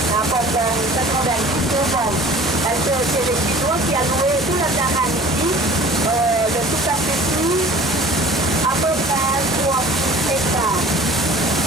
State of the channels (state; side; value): normal; both; correlation 0.46